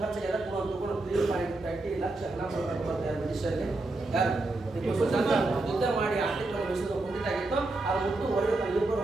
ಖರ್ಚು ಎಲ್ಲ ತಗೊಂಡು 3.30 ಲಕ್ಷ ಹಣ ಕೊಡ್ತಾರೆ ಬ್ರಿಟಿಷರಿಗೆ. ಯಾರು? ಟಿಪ್ಪು ಸುಲ್ತಾನ ಯುದ್ಧ ಮಾಡಿ ಆರ್ಥಿಕವಾಗಿ ಮೈಸೂರು ಕುಂಠಿತಾಗಿತ್ತು. ಅದು ಮುಟ್ಟು ಹೊರಗೆ ತನ್ನ 2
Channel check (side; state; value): left; quieter; 3.0 dB